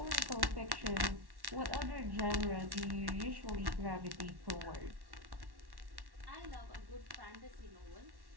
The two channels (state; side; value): late; left; 1.1 ms